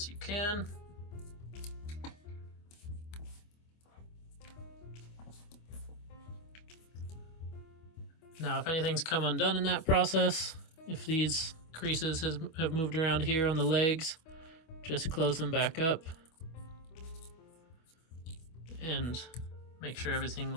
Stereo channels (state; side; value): late; right; 25 ms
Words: you can. Now, if anything's come undone in that process, if these creases have moved around here on the legs, just close them back up and make sure everything